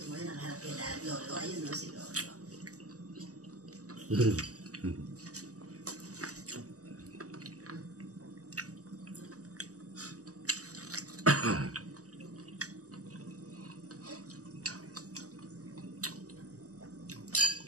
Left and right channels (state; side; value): late; left; 0.66 ms